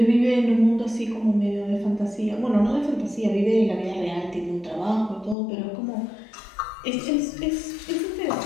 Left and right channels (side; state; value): right; drops out; at 5.4 s